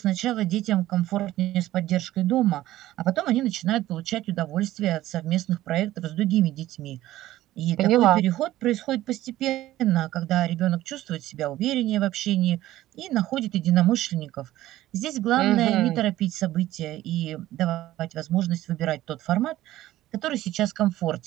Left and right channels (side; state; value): left; quieter; 15.0 dB